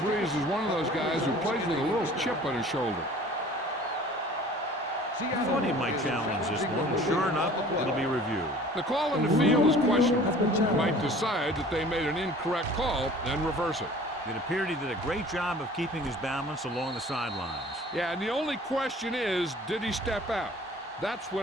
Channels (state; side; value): normal; both; correlation 0.47